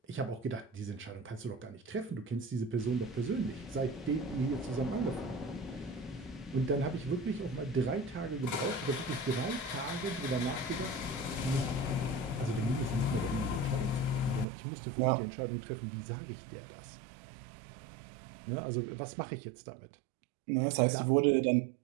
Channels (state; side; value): drops out; left; at 14.5 s